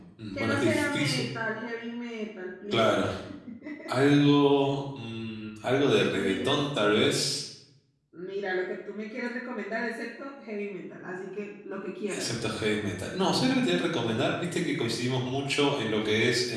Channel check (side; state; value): both; identical; correlation 1.00